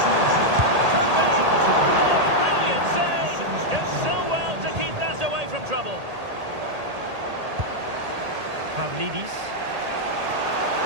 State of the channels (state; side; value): late; left; 1.8 ms